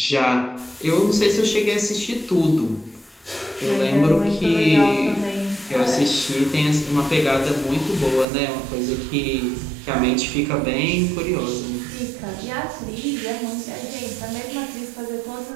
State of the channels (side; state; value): left; drops out; at 8.2 s